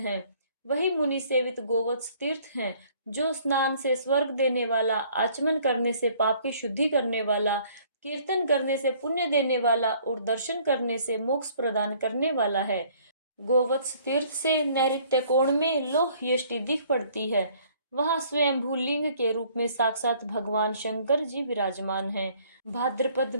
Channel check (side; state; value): both; inverted; correlation -0.58